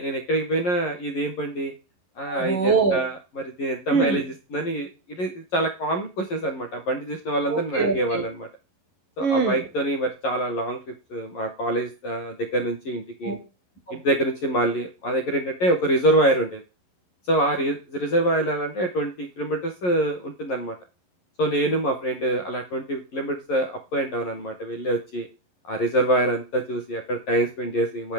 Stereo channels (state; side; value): late; right; 11 ms